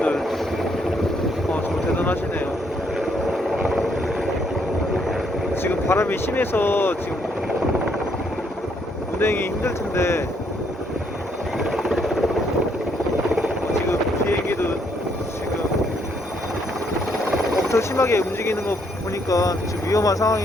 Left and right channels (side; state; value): both; normal; correlation 0.71